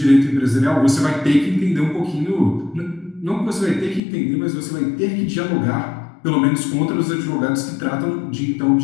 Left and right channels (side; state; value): right; drops out; at 4.0 s